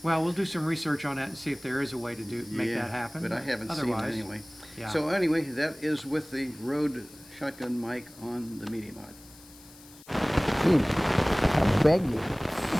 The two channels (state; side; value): noise; left; hiss, 22 dB below the sound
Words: Well, we'll do some research on that and see if there is a way to make Yeah, that happen. But I haven't Otherwise, seen it anyway. Yeah. So anyway, that is with the Rode shotgun mic on the Media Mod. I beg you.